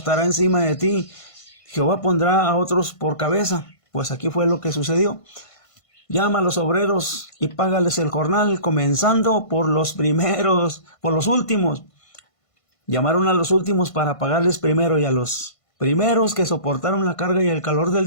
encima de ti. Jehová pondrá a otros por cabeza. Pues aquí fue lo que sucedió. Llama a los obreros y págales el jornal, comenzando por los primeros, por los últimos. Llamaron a los últimos para pagarles primero, y a los primeros que soportaron la carga y el calor del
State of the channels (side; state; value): right; late; 1.5 ms